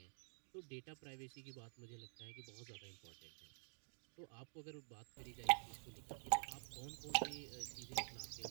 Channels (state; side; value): silent; left; digital silence